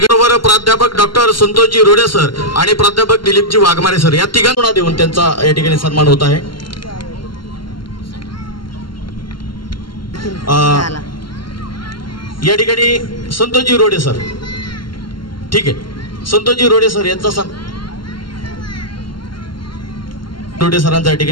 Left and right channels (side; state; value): right; late; 0.72 ms